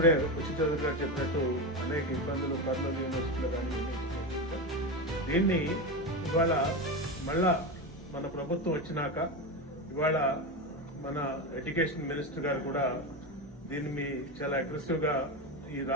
ఉచిత గారు చెప్పినట్టు అనేక ఇబ్బందులు కర్నూలు యూనివర్సిటీలో కానీ దీన్ని ఇవాళ మళ్ళా మన ప్రభుత్వం వచ్చినాక ఇవాళ మన ఎడ్యుకేషన్ మినిస్టర్ గారు కూడా దీన్ని చాలా అగ్రెసివ్ గా ఈ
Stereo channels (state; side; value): normal; both; correlation 0.17